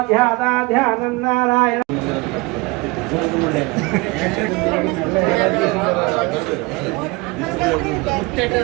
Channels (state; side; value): quieter; left; 24.6 dB